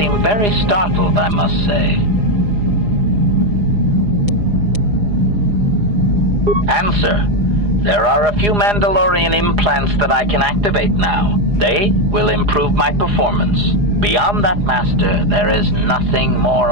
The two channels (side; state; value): left; late; 4.9 ms